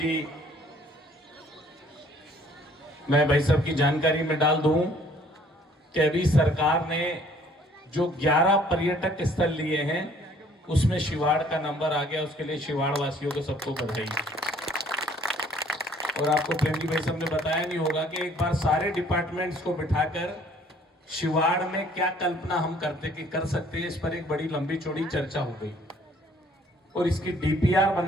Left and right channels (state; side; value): normal; both; correlation 0.59